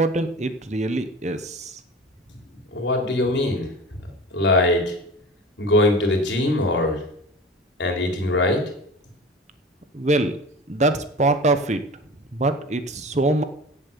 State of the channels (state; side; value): normal; both; correlation 0.35